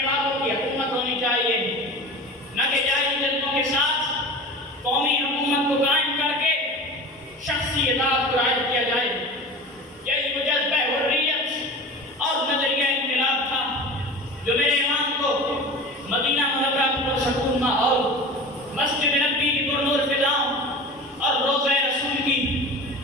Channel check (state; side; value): normal; both; correlation 0.34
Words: والوں کی حکومت ہونی چاہیے، نہ کہ جائز جذبوں کے ساتھ قومی حکومت کو قائم کر کے شخصی اطاعت کو رائج کیا جائے۔ یہی وہ جذبہ حریت اور نظریہ انقلاب تھا جو میرے امام کو مدینہ منورہ کی پرسکون ماحول، مسجد نبی کی پرنور فضاؤں اور روضہ رسول کی